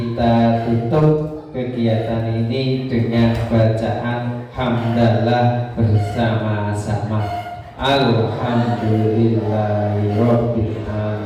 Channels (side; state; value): both; identical; correlation 1.00